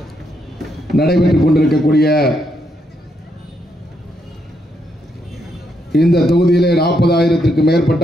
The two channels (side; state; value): both; normal; correlation 0.78